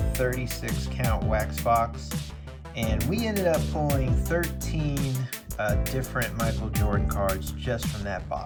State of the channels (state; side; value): identical; both; correlation 1.00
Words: 36 count wax box and we ended up pulling 13 different Michael Jordan cards just from that